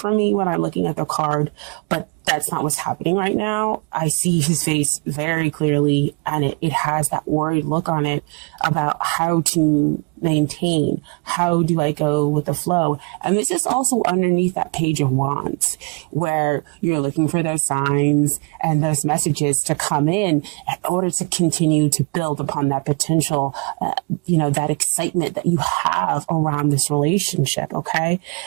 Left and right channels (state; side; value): quieter; left; 32.1 dB